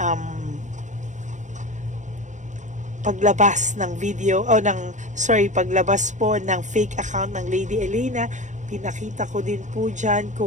paglabas ng video paglabas po ng fake account ng Lady Elena. Pinakita ko din po diyan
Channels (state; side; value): late; left; 0.35 ms